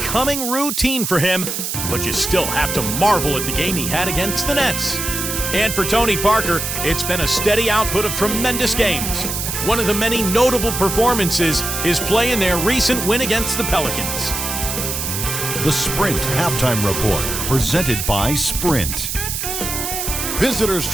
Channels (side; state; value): right; noise; hiss, 3 dB below the sound